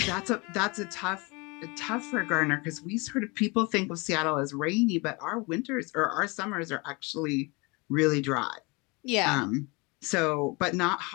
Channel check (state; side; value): quieter; right; 27.5 dB